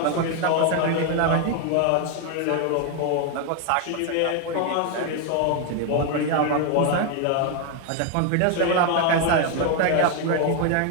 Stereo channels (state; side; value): different; both; correlation 0.01